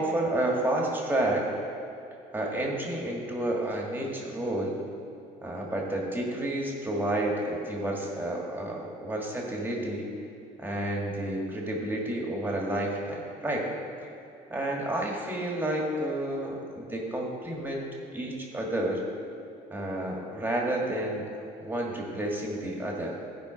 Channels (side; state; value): both; normal; correlation 0.56